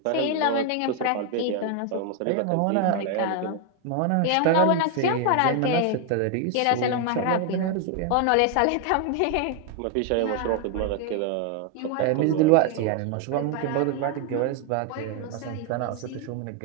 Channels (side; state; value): both; different; correlation 0.01